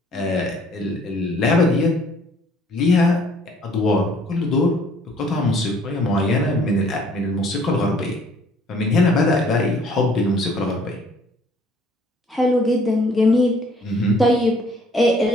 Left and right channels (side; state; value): both; normal; correlation 0.59